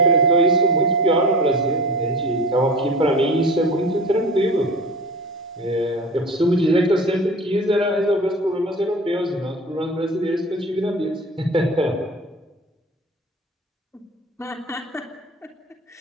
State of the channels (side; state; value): both; normal; correlation 0.35